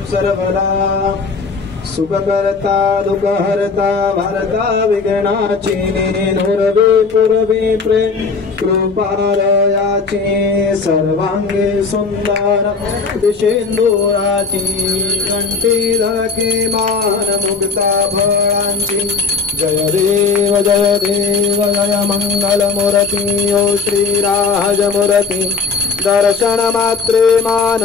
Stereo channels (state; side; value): quieter; right; 4.8 dB